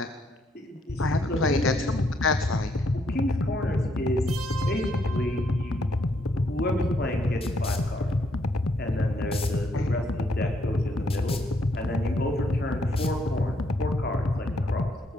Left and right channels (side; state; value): both; normal; correlation 0.73